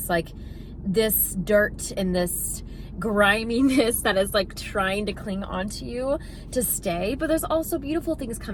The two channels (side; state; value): both; identical; correlation 1.00